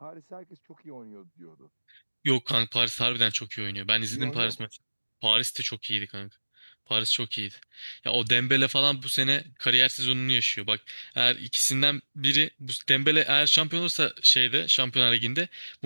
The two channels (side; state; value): both; inverted; correlation -1.00